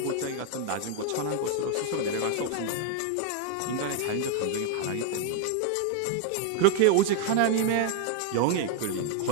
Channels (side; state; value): both; different; correlation 0.01